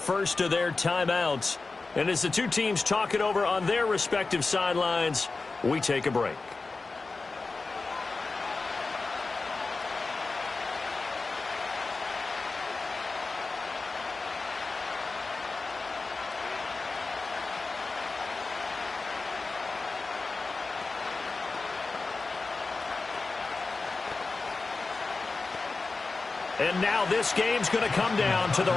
of their timeouts. And as the 2 teams talk it over on their respective sidelines, we take a break. And now this game's going to come down to the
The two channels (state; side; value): quieter; right; 3.8 dB